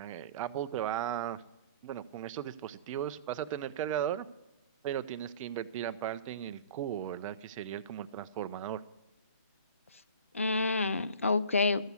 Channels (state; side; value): inverted; both; correlation -0.41